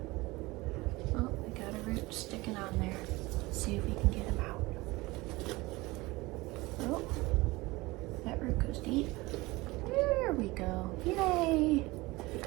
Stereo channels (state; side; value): quieter; left; 21.6 dB